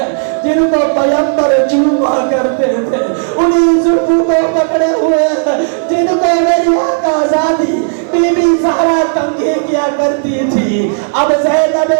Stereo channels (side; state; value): left; silent; digital silence